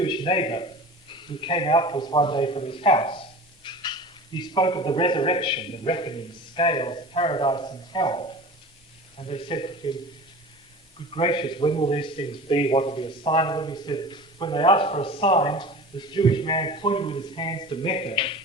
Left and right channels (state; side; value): normal; both; correlation 0.37